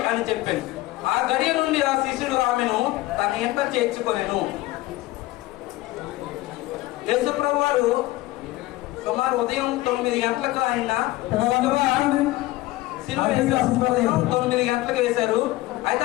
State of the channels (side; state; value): right; quieter; 18.1 dB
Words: అని చెప్పాను. ఆ గడియ నుండి ఆ శిష్యుడు ఆమెను తన ఇంట చేర్చుకొనెను. యేసు ప్రభు వారు సుమారు ఉదయం 9 గంటలకు ఆయన ఉదయం 9 గంటలకు వేశారు. అయితే